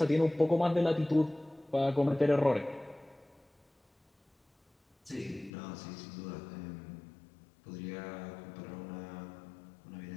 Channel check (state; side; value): drops out; right; at 5.5 s